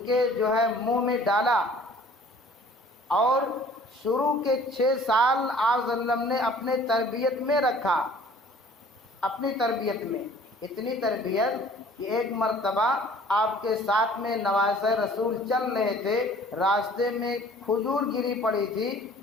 کے جو ہے منہ میں ڈالا، اور شروع کے 6 سال آپ صلی اللہ علیہ وسلم نے اپنے تربیت میں رکھا. اپنی تربیت میں اتنی تربیت کہ ایک مرتبہ آپ کے ساتھ میں نواسہ رسول چل رہے تھے، راستے میں کھجور گری پڑی تھی،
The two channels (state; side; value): normal; both; correlation 0.52